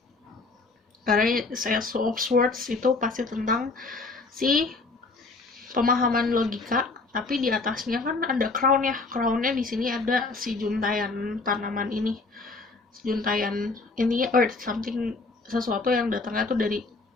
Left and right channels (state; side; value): quieter; right; 3.7 dB